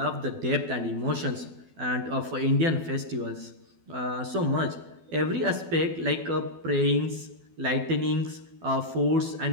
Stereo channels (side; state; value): left; late; 12 ms